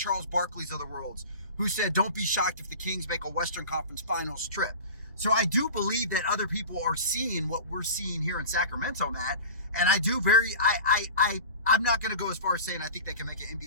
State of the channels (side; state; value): both; inverted; correlation -0.35